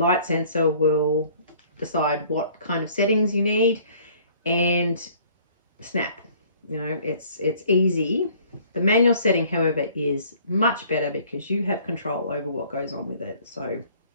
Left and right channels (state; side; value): inverted; both; correlation -0.55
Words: sensor will decide what kind of settings you need, and snap. It's easy. The manual setting, however, is much better because you have control over what goes on with it. So